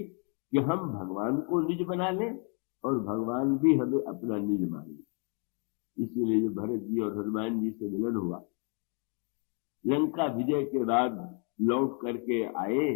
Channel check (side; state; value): right; quieter; 39.2 dB